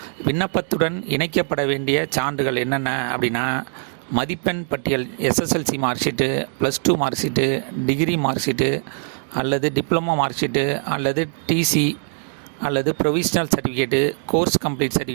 விண்ணப்பத்துடன் இணைக்கப்பட வேண்டிய சான்றுகள் என்னென்ன அப்படின்னா, மதிப்பெண் பட்டியல், SSLC mark sheet, +2 mark sheet, degree mark sheet அல்லது டிப்ளமோ மார்க் ஷீட்டு அல்லது TC அல்லது provisional certificate, course complete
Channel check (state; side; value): silent; left; digital silence